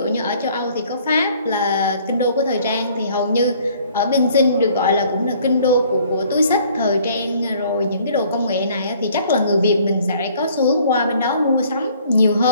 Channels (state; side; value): inverted; both; correlation -0.58